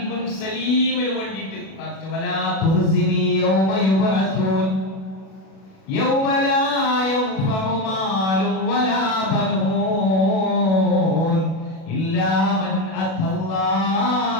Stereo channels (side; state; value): right; late; 37 ms